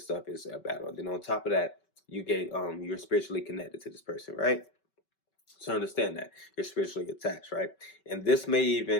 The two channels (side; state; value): right; late; 5.3 ms